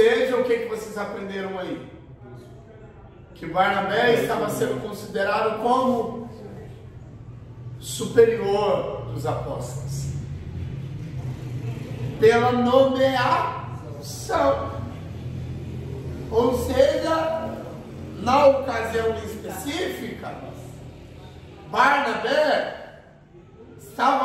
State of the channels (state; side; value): identical; both; correlation 1.00